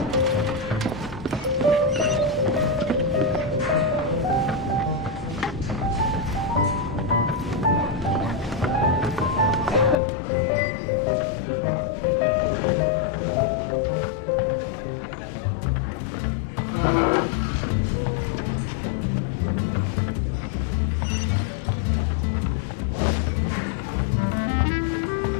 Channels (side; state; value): right; drops out; at 10.0 s